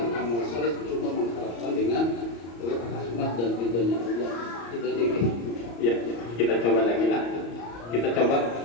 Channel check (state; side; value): late; right; 34 ms